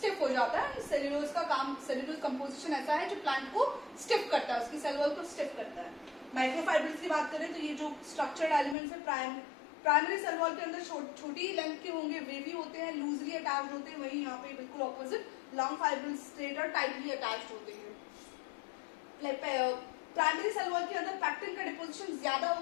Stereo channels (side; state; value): right; drops out; at 8.8 s